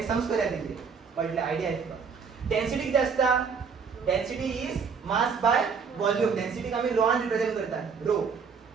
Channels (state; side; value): quieter; left; 5.8 dB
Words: सम्स करूया तितले कळले आयडिया येता. डेन्सिटी कितें आसता density is mass by volume. डेन्सिटीक आमी रोआन रिप्रेझेंट करतात रो.